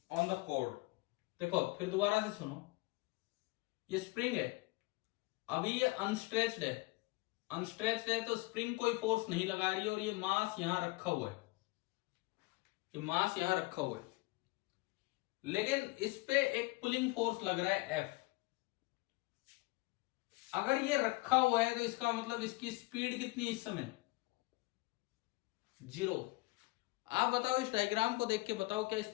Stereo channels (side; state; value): right; quieter; 23.5 dB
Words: on the cord। देखो फिर दोबारा से सुनो, ये स्प्रिंग है, अभी ये अनस्ट्रेच्ड है। अनस्ट्रेच्ड है तो स्प्रिंग कोई फोर्स नहीं लगा रही है, और ये मास यहां रखा हुआ है, ये मास यहां रखा हुआ है, लेकिन इस पे एक पुलिंग फोर्स लग रहा है F। अगर ये रखा हुआ है तो इसका मतलब इसकी स्पीड कितनी इस समय? 0। आप बताओ, इस डायग्राम को देख के बताओ, क्या इस